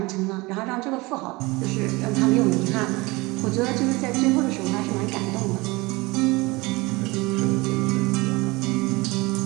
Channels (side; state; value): left; quieter; 23.4 dB